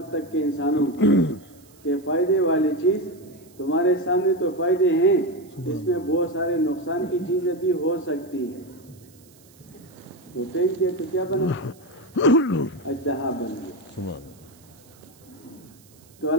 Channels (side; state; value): right; noise; hiss, 27 dB below the sound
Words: تک کے انسانوں کو کہ فائدے والی چیز تمہارے سامنے تو فائدے ہیں، اس میں بہت سارے نقصان کی چیزیں بھی ہو سکتی ہیں۔ تو پھینک دیا تو کیا بنا؟ اژدہا بن گیا۔ تو